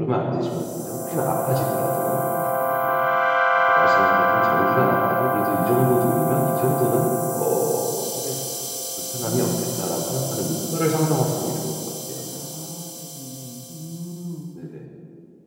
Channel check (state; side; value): identical; both; correlation 1.00